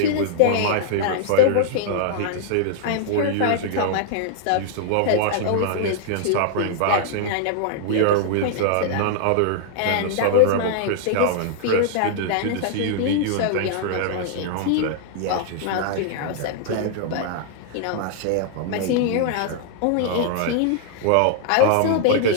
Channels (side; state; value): both; different; correlation -0.01